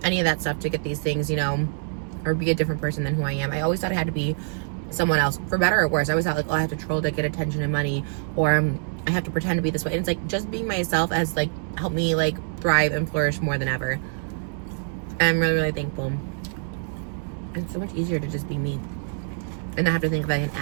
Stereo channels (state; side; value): silent; left; digital silence